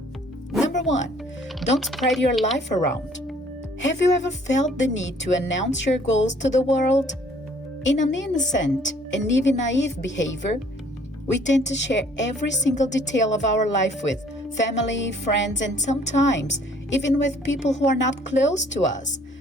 Number 1, don't spread your life around. Have you ever felt the need to announce your goals to the world? In an innocent and even naive behavior, we tend to share every single detail of our life with family, friends, and sometimes even with people who are not close to us,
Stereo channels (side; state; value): both; normal; correlation 0.58